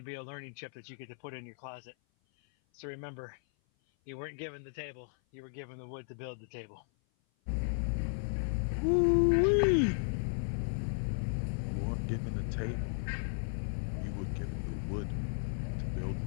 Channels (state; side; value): silent; right; 54 dB below the other